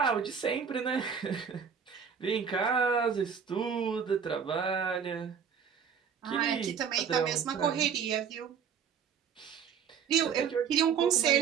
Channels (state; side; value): quieter; left; 7.1 dB